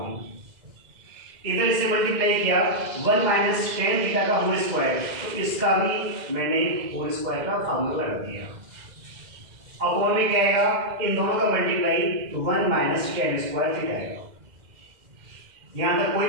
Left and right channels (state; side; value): late; left; 2.1 ms